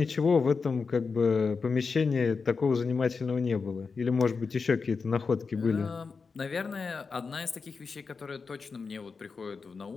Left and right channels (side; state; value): right; quieter; 4.9 dB